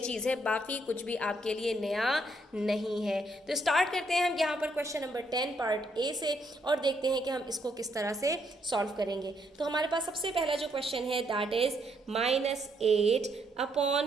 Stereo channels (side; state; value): both; normal; correlation 0.73